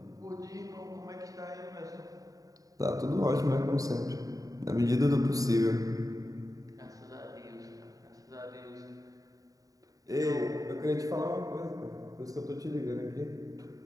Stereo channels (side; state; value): left; late; 0.17 ms